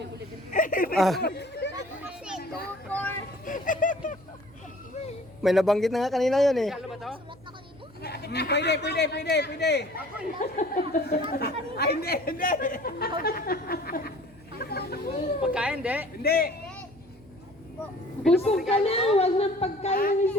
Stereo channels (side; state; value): right; noise; hum, 25 dB below the sound